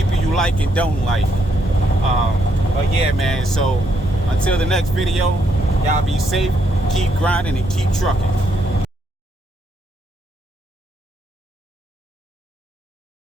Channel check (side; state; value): both; normal; correlation 0.75